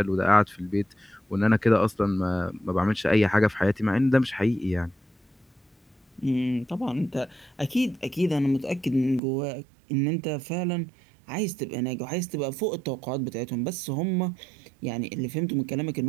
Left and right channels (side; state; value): left; drops out; at 9.2 s